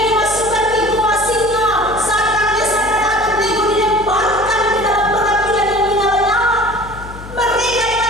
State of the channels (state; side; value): noise; left; hum, 14 dB below the sound